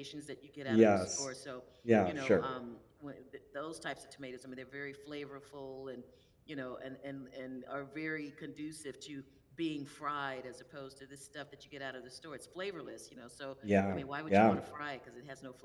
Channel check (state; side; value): identical; both; correlation 1.00